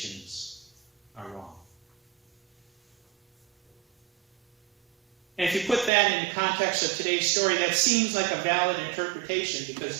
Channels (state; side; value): drops out; left; at 5.9 s